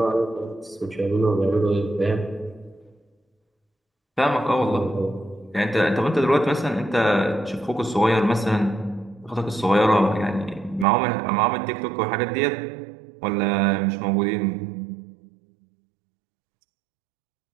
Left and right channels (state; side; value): drops out; left; at 10.9 s